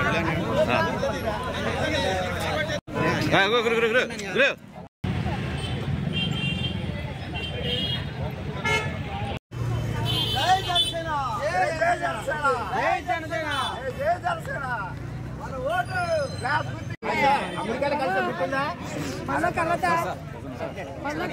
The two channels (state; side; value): identical; both; correlation 1.00